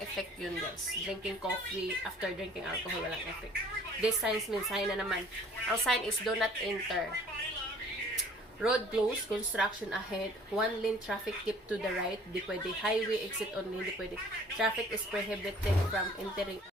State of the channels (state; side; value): normal; both; correlation 0.53